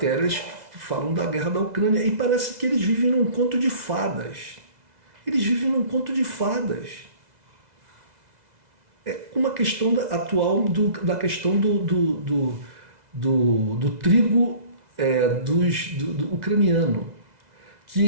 que falam da guerra da Ucrânia e parece que eles vivem num conto de fadas. Eles vivem num conto de fadas. É uma questão atual da questão do trigo do ucraniano,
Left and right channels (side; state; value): left; late; 2.0 ms